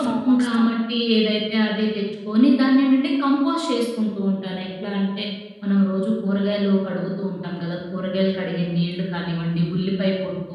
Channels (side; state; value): both; identical; correlation 1.00